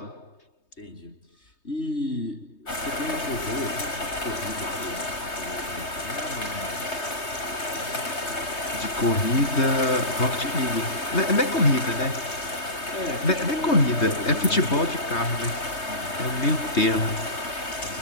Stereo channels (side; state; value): right; late; 3.2 ms